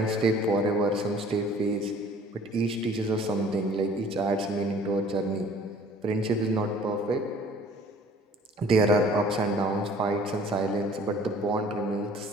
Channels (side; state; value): both; normal; correlation 0.52